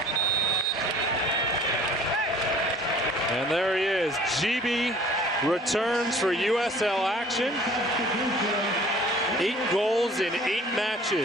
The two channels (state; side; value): normal; both; correlation 0.51